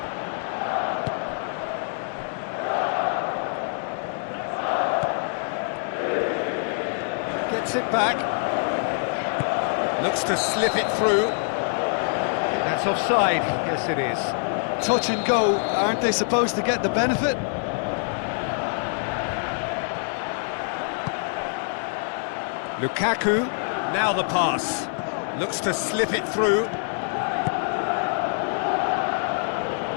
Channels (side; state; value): right; silent; 62 dB below the other